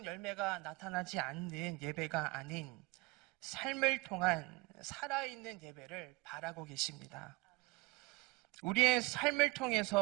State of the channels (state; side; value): quieter; left; 23.7 dB